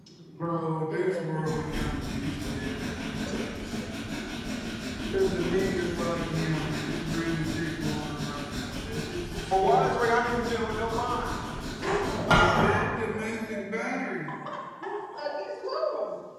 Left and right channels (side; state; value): both; identical; correlation 1.00